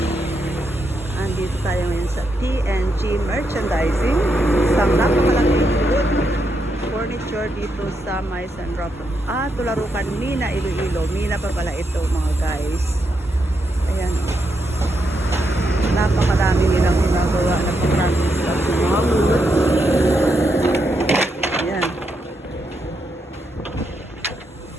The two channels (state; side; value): normal; both; correlation 0.81